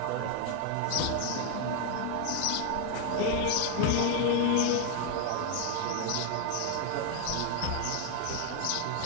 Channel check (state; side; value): different; both; correlation 0.00